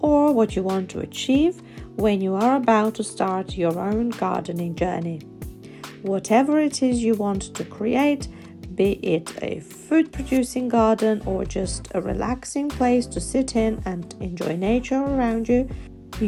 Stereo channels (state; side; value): identical; both; correlation 1.00